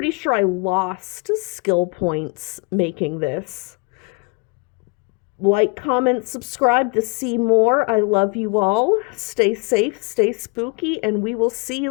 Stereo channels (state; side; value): quieter; right; 32.0 dB